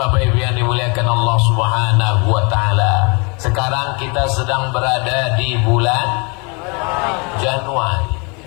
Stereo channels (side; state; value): right; quieter; 31.2 dB